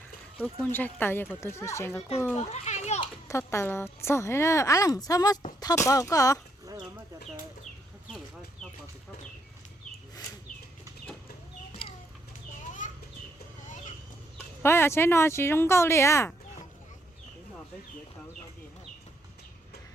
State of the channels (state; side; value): normal; both; correlation 0.73